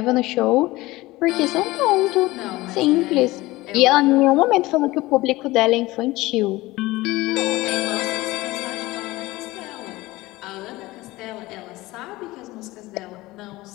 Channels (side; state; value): right; quieter; 19.4 dB